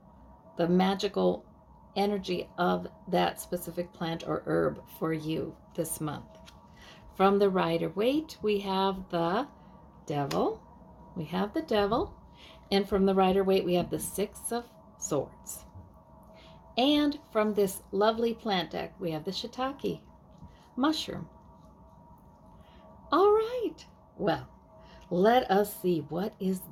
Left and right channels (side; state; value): both; identical; correlation 1.00